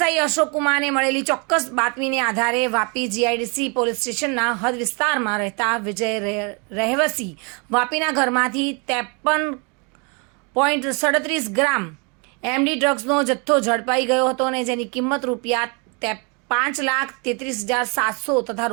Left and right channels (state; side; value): quieter; left; 33.0 dB